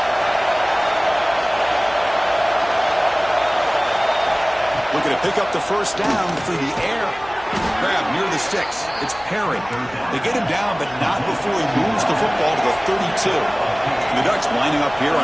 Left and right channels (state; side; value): noise; left; hum, 21 dB below the sound